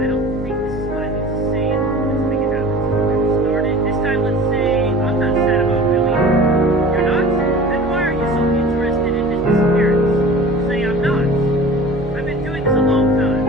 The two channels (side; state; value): both; normal; correlation 0.40